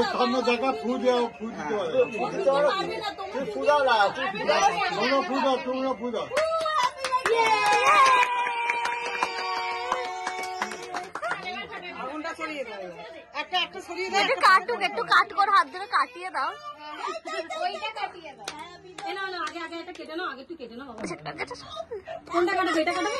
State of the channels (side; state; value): both; identical; correlation 1.00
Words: সামনে জায়গা ফু দাও, ফু দিতে হবে। তুই ফু দাও না, তোমরা ফু দাও, তোমরা ফু দাও। আগুনটা সরিয়ে দাও, একটা একটা সরিয়ে দাও। একটু কাটুক, একটু কাট করে হাত ধরে কাটিয়ে দাও। এ না না, আগে আগে এটা কেটে নাও, আগে একটু কেটে নাও বাবা। কোনটা কাটাবে? এটা কাটাবে?